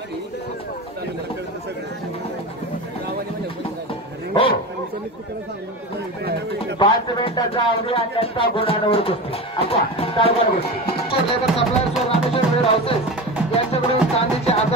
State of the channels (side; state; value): both; normal; correlation 0.27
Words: हो 5 मिनिटाचा अवधी आणि त्यांचा गुणांवर कुस्ती अच्छा चालणार गोष्टी लेबर सप्लायर्स व रामेश्वर वेळ हाऊसेस यांच्याकडून चांदीचे